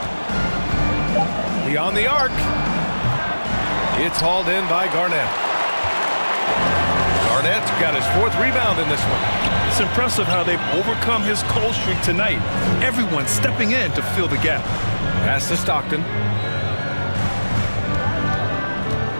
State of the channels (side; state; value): both; inverted; correlation -1.00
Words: Beyond the arc. It's hauled in by Garnett. Garnett's got his 4th rebound in this one. It's impressive how they've overcome his cold streak tonight. Everyone stepping in to fill the gap. Pass to Stockton.